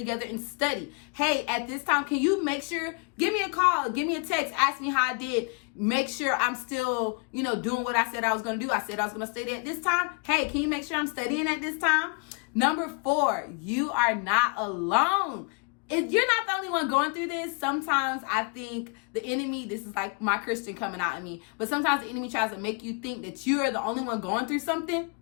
and study. Hey, at this time, can you make sure, give me a call, give me a text, ask me how I did. Make sure I'm still, doing what I said I was going to do. I said I was going to study at this time. Hey, can you make sure I'm studying at this time? Number 4, you are not alone. If you're not the only one going through this, sometimes I think the enemy, this is like my Christian coming out of me, but sometimes the enemy tries to make you think that you are the only one going through something.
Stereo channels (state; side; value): quieter; right; 35.8 dB